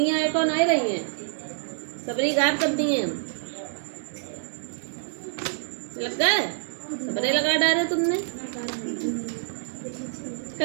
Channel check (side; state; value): left; silent; digital silence